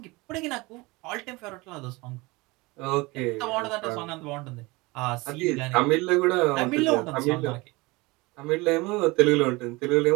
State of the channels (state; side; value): quieter; left; 23.6 dB